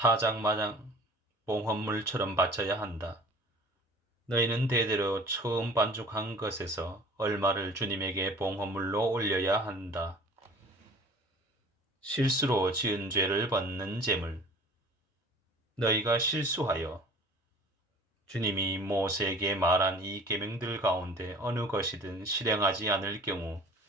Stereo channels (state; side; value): normal; both; correlation 0.46